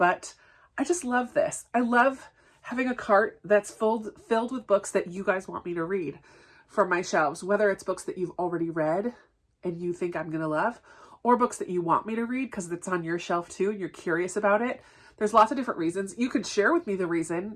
I just love this. I love having a cart that's filled with books that you guys want me to read from my shelves, whether it's books that you've already read and you think I'm going to love, or books that you want me to read because it's on your shelf too and you're curious about it. There's lots of different reasons. You could share with me the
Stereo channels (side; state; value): both; identical; correlation 1.00